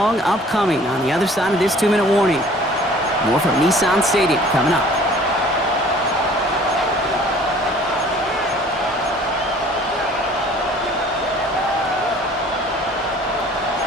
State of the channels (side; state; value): both; normal; correlation 0.51